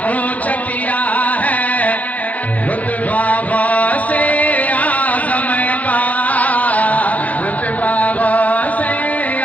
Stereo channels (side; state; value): right; late; 0.074 ms